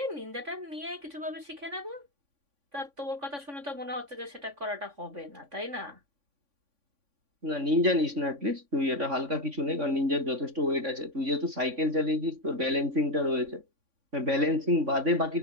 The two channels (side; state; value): left; late; 3.5 ms